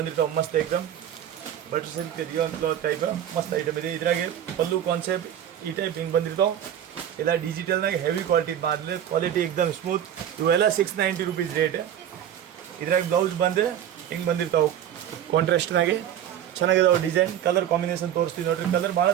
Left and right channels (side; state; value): left; quieter; 10.2 dB